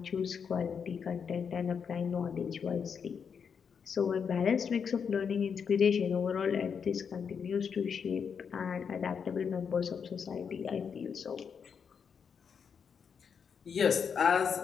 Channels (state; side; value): quieter; right; 6.7 dB